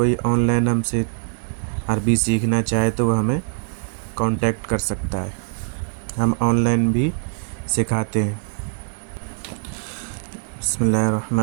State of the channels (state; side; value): silent; left; 64 dB below the other